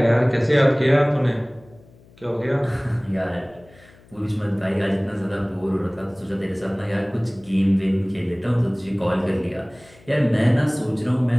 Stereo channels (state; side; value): noise; left; hum, 26 dB below the sound